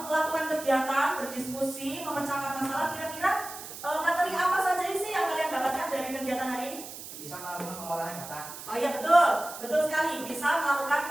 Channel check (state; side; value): noise; right; hiss, 12 dB below the sound